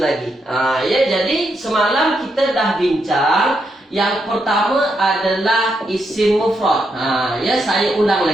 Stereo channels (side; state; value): both; normal; correlation 0.81